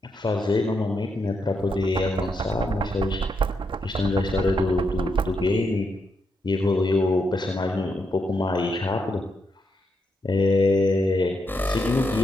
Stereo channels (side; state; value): both; normal; correlation 0.81